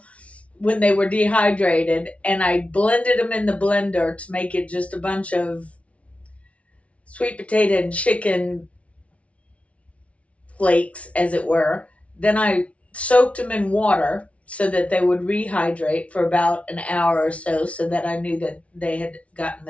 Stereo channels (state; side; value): late; right; 0.064 ms